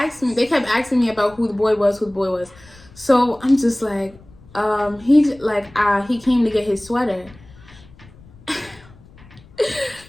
asking me about who the boy was. So I'm just like, he came to get his sweater.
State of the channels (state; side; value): noise; left; rumble, 24 dB below the sound